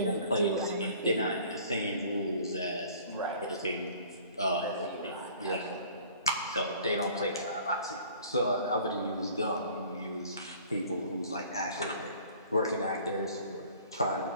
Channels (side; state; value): both; inverted; correlation -0.51